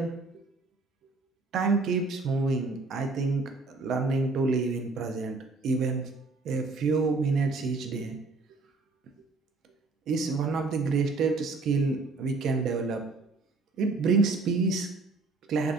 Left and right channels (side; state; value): left; quieter; 3.7 dB